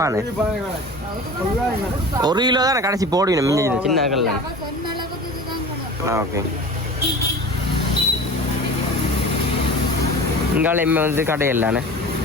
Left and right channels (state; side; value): normal; both; correlation 0.37